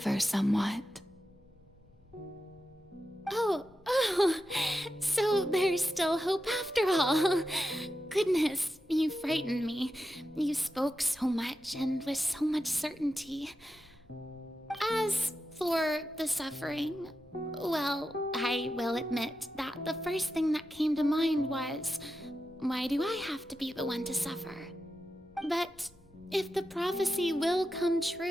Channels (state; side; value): normal; both; correlation 0.89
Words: somewhat. Oh, so there's still hope after all. Goodness, you frightened me. You spoke so much and with so much certainty. As for the suffering, well, I will admit that the first thing that came to mind was, why do I have to be the one to suffer? But if the prophecy will come